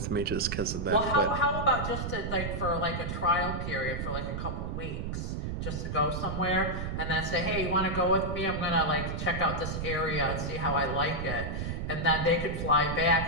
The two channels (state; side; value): noise; right; rumble, 4 dB below the sound